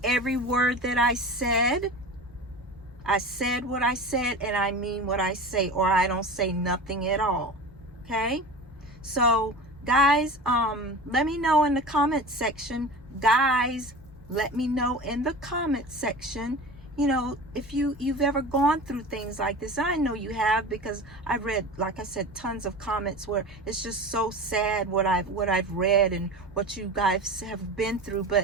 every word that I said. I said what I said, and I mean what I say, or I don't say nothing at all. Okay? So, guys, let me know in the comment section. Guys, let me know in the comment section, you know, if you've ever gone through things like this. I know you have, because I've read, like I said, tons of comments where it's just so sad what I've read and what you guys have been through.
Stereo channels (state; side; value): normal; both; correlation 0.32